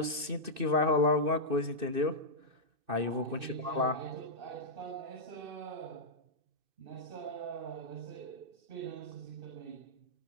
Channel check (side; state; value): left; late; 2.6 ms